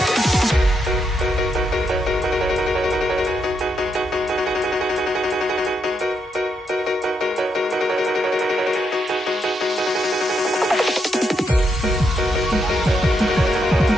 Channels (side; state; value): both; normal; correlation 0.80